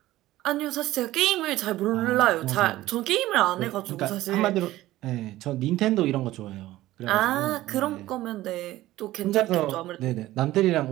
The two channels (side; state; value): left; quieter; 16.0 dB